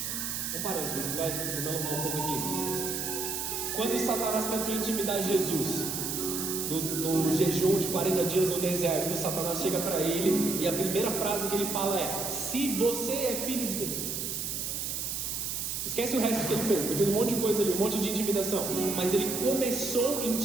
Um parênteses, vou me alongar um pouco aqui. Quando Satanás tentou intimidar Jesus no jejum de 40 dias no deserto, Satanás chega para ele e a primeira frase que ele fala é: se você é filho de Deus. Esquece o resto que ele fez. Ele fez um monte de coisa ali, um monte de intimidação, mas ele começou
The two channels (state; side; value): noise; right; hiss, 3 dB below the sound